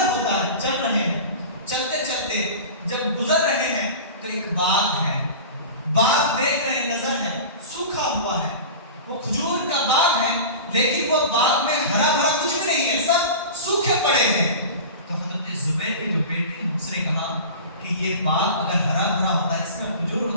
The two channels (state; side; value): inverted; both; correlation -0.34